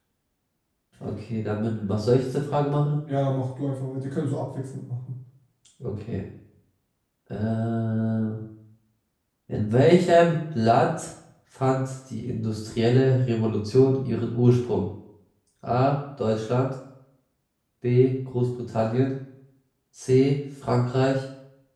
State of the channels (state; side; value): identical; both; correlation 1.00